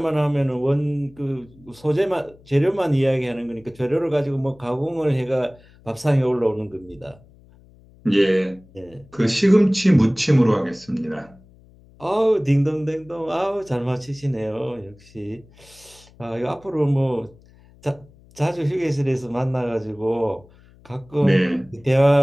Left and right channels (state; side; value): noise; left; hum, 26 dB below the sound